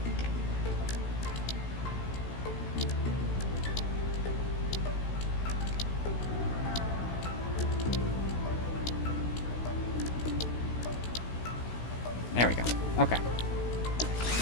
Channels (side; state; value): right; late; 16 ms